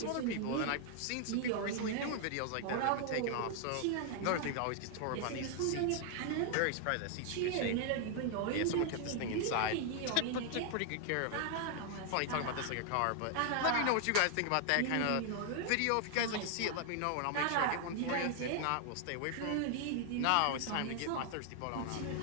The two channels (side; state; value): both; different; correlation 0.00